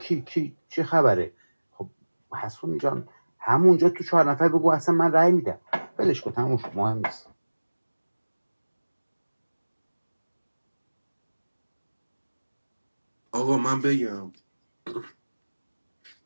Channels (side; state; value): both; inverted; correlation -1.00